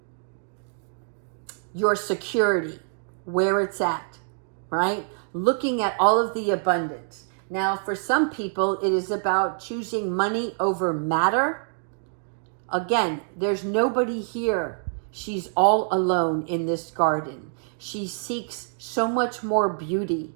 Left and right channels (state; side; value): silent; left; digital silence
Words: your security, where it's at, right? Looking at all of the abundance. Now, for some people, it is about choosing money over matter. Again, there's nobody here. She's all alone in this garden. She seeks so much more beauty,